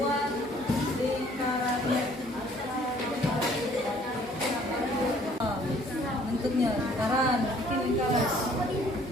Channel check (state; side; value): normal; both; correlation 0.58